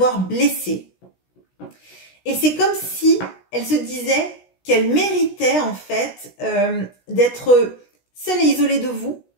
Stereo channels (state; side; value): late; right; 16 ms